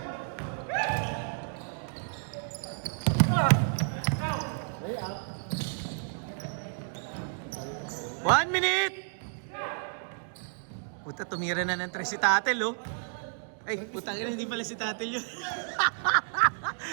One minute! Puta, tumira na ng 3 si Tatel, oh. Ay, putang ina, hindi pala si Tatel yun.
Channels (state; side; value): silent; left; digital silence